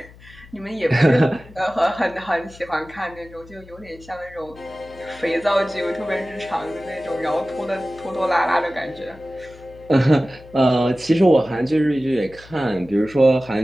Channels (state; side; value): noise; left; hum, 22 dB below the sound